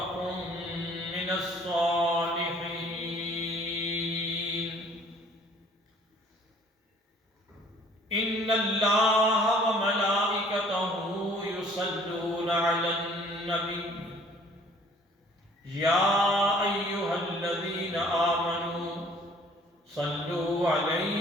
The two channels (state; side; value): normal; both; correlation 0.55